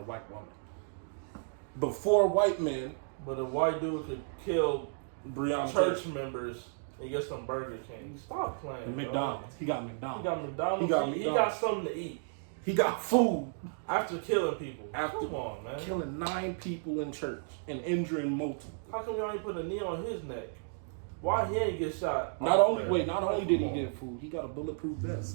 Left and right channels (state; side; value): silent; left; digital silence